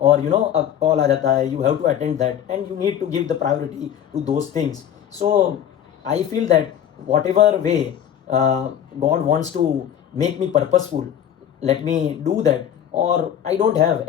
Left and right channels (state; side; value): quieter; right; 9.7 dB